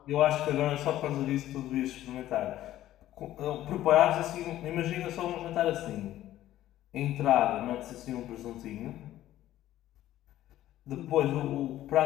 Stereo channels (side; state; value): right; quieter; 13.7 dB